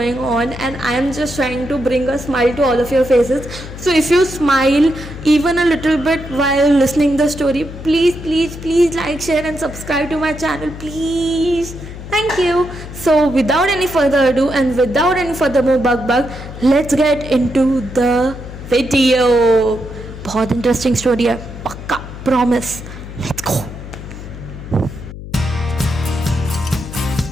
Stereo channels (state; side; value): noise; left; hum, 12 dB below the sound